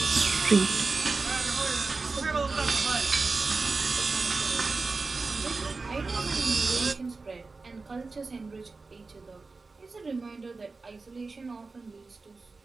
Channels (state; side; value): quieter; left; 3.9 dB